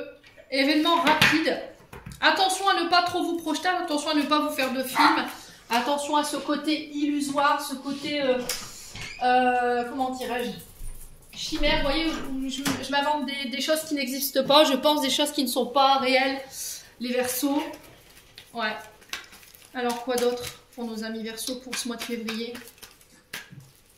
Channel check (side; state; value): both; identical; correlation 1.00